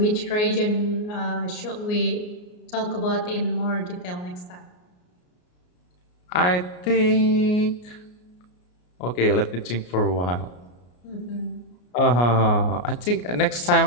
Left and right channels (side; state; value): right; late; 33 ms